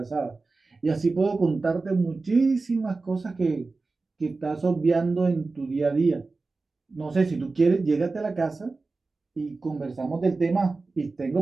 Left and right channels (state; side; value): quieter; left; 3.8 dB